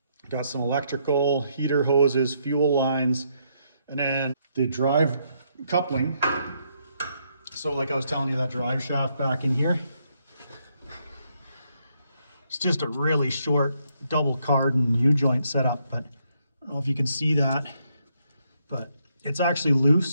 Got some electrical, heater hoses, fuel lines, and then the drive coupling. So like I was telling you, that drive shaft back in here, it's just a really short double cardan U-joint setup, but I don't know if you can see that, but it's actually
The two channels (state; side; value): inverted; both; correlation -0.75